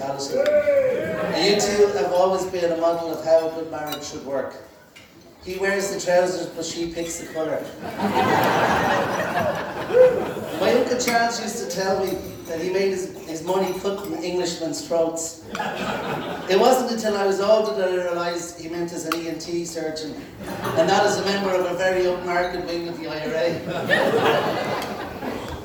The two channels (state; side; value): identical; both; correlation 1.00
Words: And you two have always been a model of how a good marriage should work. He wears the trousers, but she picks the colour. My Uncle Charles used to tell me that he made his money cutting Englishmen's throats. It wasn't until I was older that I realised he meant as an ENT surgeon, and not as a member of a very upmarket wing of the IRA.